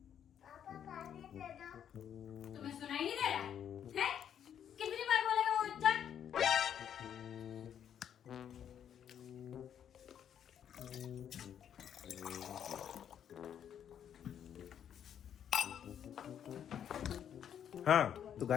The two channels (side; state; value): right; quieter; 9.2 dB